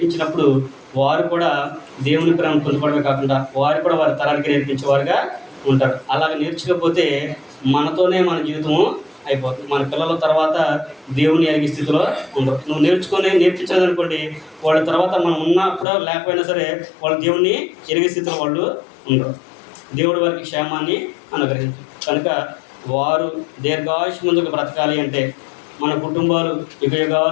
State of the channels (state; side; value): drops out; right; at 15.9 s